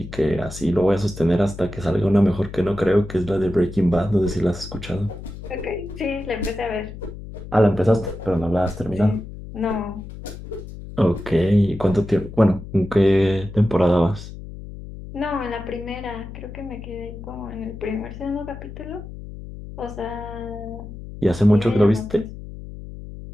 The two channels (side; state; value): left; noise; hum, 12 dB below the sound